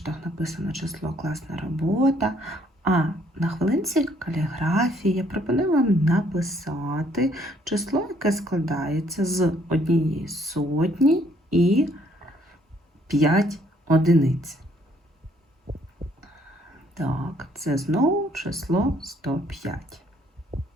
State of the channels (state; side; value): normal; both; correlation 0.65